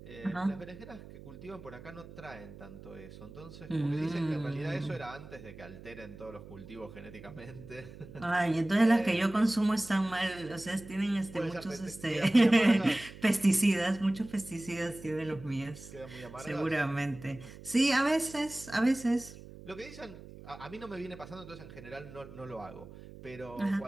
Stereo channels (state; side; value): noise; right; hum, 16 dB below the sound